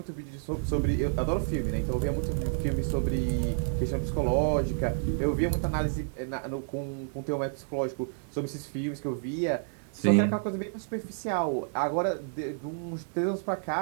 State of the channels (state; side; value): silent; left; digital silence